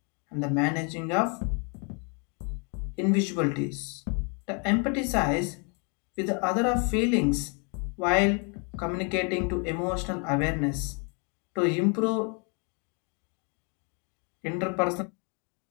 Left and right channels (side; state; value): right; quieter; 36.3 dB